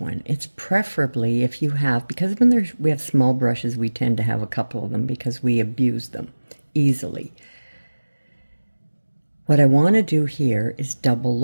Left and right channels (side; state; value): both; inverted; correlation -1.00